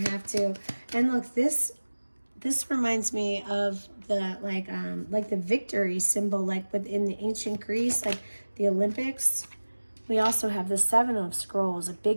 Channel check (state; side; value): inverted; both; correlation -1.00